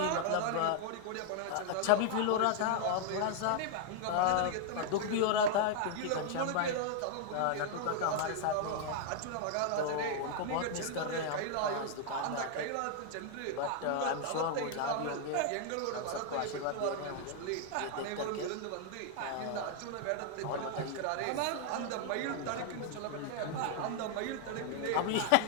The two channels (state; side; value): different; both; correlation 0.00